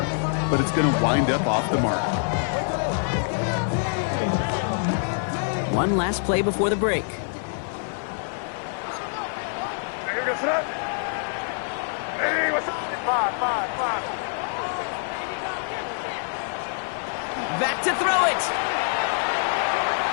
but it's going to wind up off the mark. One last play before the break. Back to throw it.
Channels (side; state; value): right; silent; 56 dB below the other